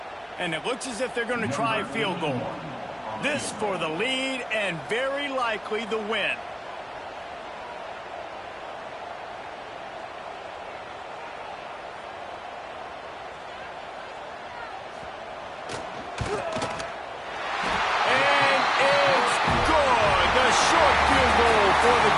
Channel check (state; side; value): identical; both; correlation 1.00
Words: And it looks as if they're going to try a field goal. This for the lead and very likely the win. For the